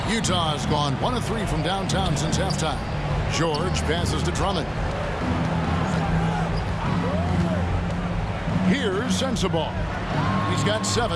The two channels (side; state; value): both; identical; correlation 1.00